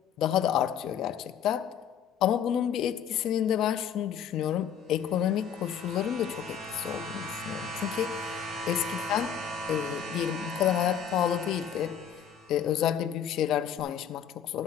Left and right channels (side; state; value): right; quieter; 8.5 dB